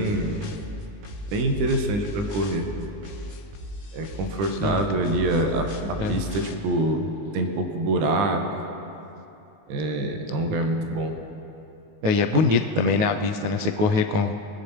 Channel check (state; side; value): late; left; 19 ms